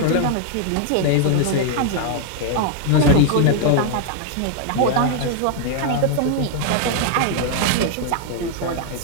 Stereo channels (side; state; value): both; different; correlation 0.00